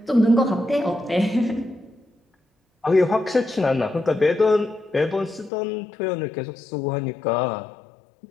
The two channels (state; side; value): drops out; right; at 5.5 s